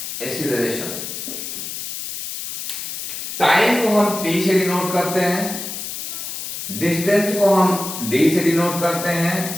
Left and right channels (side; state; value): left; noise; hiss, 6 dB below the sound